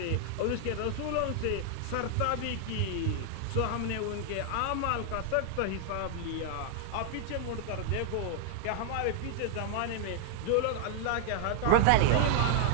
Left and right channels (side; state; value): both; different; correlation -0.01